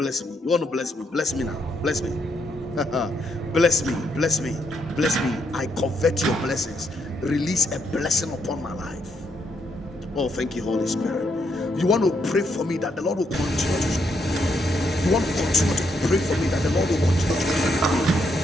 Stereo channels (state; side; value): normal; both; correlation 0.76